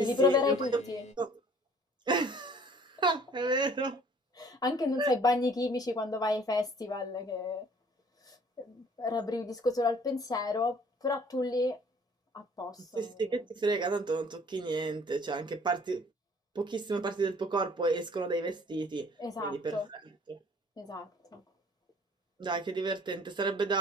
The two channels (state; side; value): normal; both; correlation 0.54